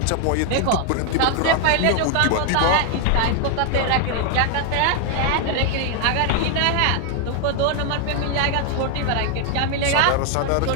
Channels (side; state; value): both; different; correlation 0.00